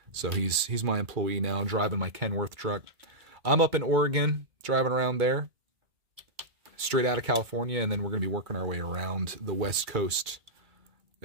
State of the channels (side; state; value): left; late; 2.3 ms